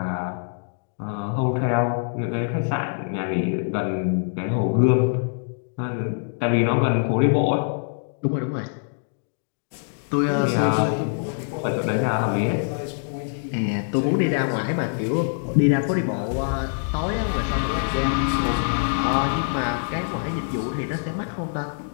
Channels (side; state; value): right; silent; digital silence